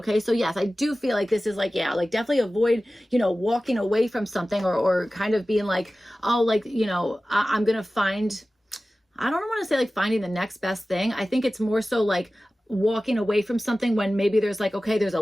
So yes, I do feel like this is like, yeah, like definitely avoid, you know, walking away from something, or kind of being like, oh, like, you know, I'm going to find, I don't want to say like finding the next best thing. I think it's more so like walking away from something when maybe there's like, okay, there's a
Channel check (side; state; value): both; normal; correlation 0.96